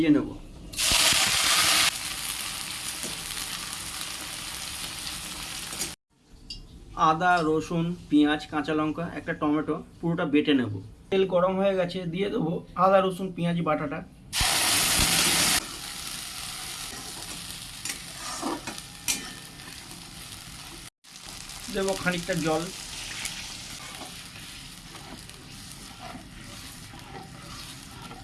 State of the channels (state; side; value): identical; both; correlation 1.00